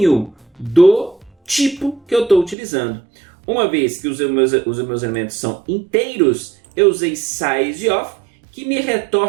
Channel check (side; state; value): left; drops out; at 2.6 s